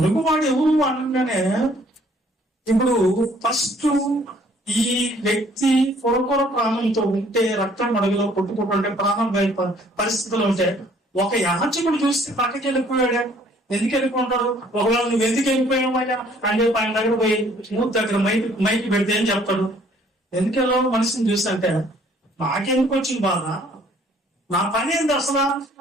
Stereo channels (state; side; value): normal; both; correlation 0.60